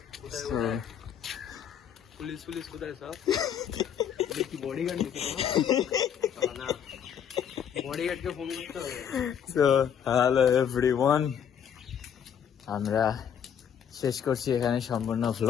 পুলিশ কোথায় সব? কি বডিগার্ড না, বডিগার্ডকে ফোন করতে হবে। সো হ্যালো এভরিওয়ান, আমরা শেষ করছি এখানে সম্পূর্ণ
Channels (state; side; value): quieter; right; 8.5 dB